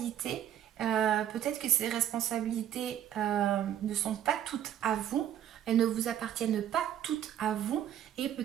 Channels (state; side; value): quieter; left; 10.7 dB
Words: Peut-être que ces responsabilités ne sont pas toutes à vous, elles ne vous appartiennent pas toutes à vous, et